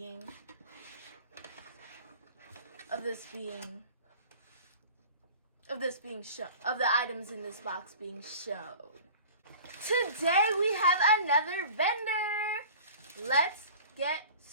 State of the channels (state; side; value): inverted; both; correlation -0.42